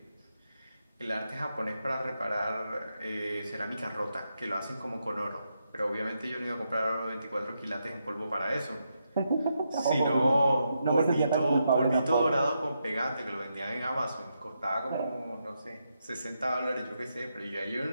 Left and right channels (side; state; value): both; inverted; correlation -0.83